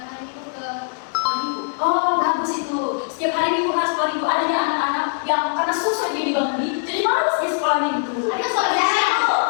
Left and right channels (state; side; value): silent; right; digital silence